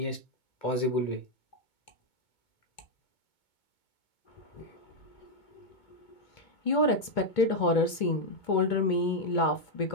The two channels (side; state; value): right; late; 2.2 ms